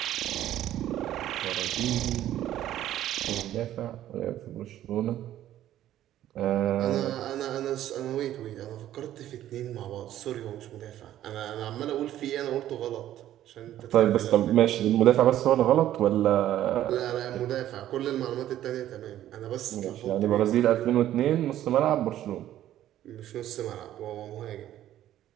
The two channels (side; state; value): left; quieter; 12.6 dB